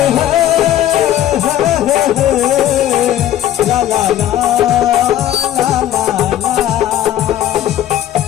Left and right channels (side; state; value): right; quieter; 12.1 dB